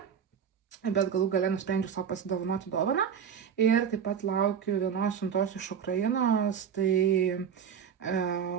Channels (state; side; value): quieter; left; 7.6 dB